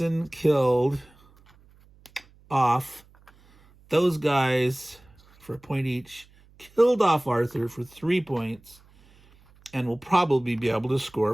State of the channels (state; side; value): noise; right; hum, 28 dB below the sound